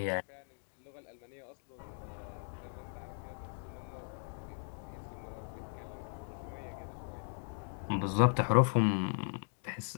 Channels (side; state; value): right; silent; digital silence